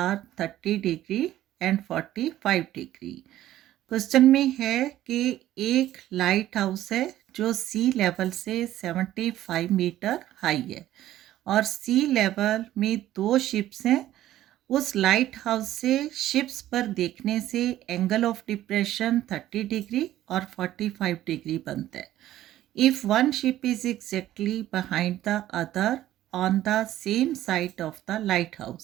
30 degree and 45 degree. Question में है कि एक लाइट हाउस है जो सी लेवल से 75 मीटर हाई है और सी लेवल में दो शिप्स हैं। उस लाइट हाउस से शिप्स पर देखने से एंगल ऑफ डिप्रेशन 30 डिग्री और 45 डिग्री बनता है। If one ship is exactly behind the other on the same side of the light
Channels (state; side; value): quieter; left; 13.6 dB